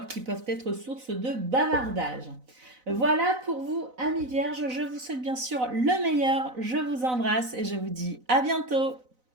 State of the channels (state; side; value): late; left; 4.0 ms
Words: qui peuvent être source de bavardage. Voilà pour vous, amis vierges. Je vous souhaite bien sûr le meilleur. Je vous embrasse et je vous dis à bientôt.